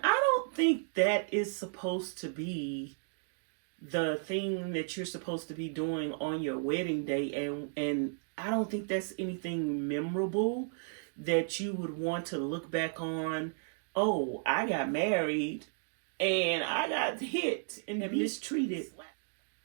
I don't think that is supposed to be the thing that you're supposed to be doing on your wedding day. And I don't think that's anything memorable that you would want to look back on. Oh, I got married and I got hit and mistreated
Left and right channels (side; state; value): left; silent; digital silence